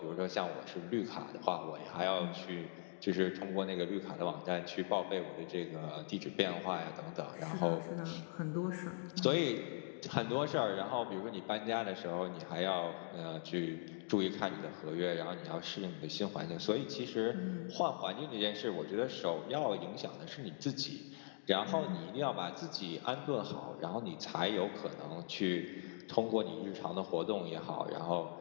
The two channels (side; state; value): right; silent; digital silence